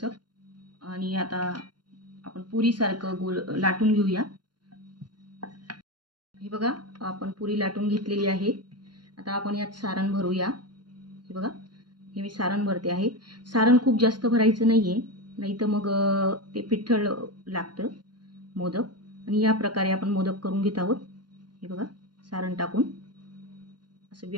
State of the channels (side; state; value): left; late; 0.71 ms